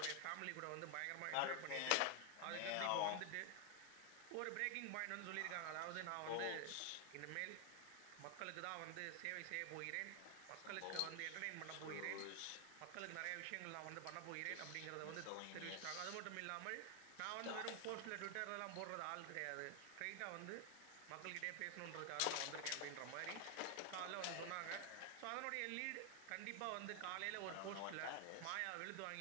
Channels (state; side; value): different; both; correlation 0.00